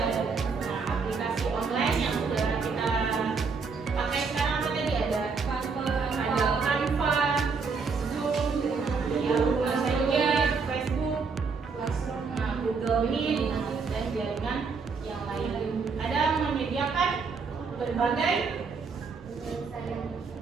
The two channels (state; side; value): quieter; left; 5.0 dB